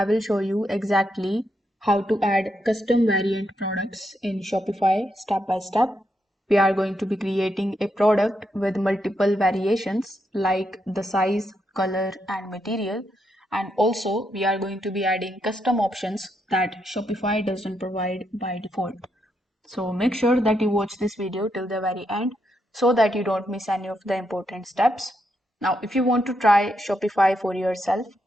will show you exactly how to add custom variant products in Shopify step by step. We are going to be creating a product with multiple variations like the size, color, and material. And also, we are going to be adding custom options that Shopify doesn't provide by default. So make sure that you watch this video till the very end so that you don't miss any of the important steps. Now, if you want to try Shopify for yourself,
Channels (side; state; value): both; normal; correlation 0.81